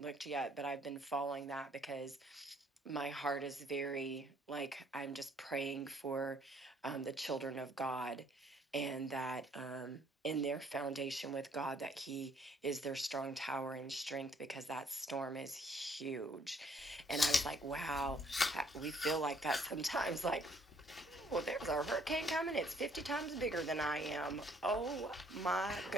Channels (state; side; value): normal; both; correlation 0.64